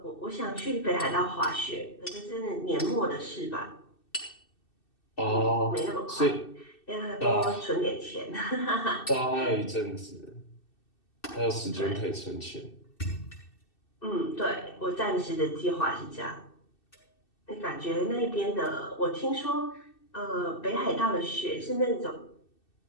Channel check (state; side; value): late; right; 2.6 ms